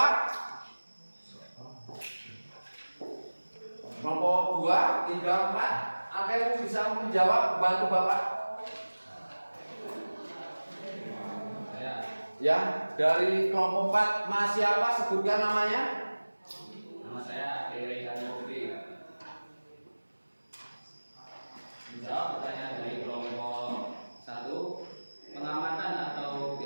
Kelompok 2, 3, 4 ada yang bisa menjawab bantu Bapak? Ya, dari kelompok 4 Mas siapa? Sebutkan namanya. Nama saya Ade Putri. Menjawab pertanyaan dari kelompok 1, pengamatan atau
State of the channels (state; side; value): inverted; both; correlation -1.00